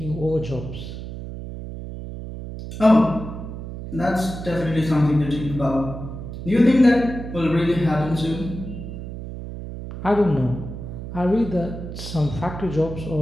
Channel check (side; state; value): right; noise; hum, 9 dB below the sound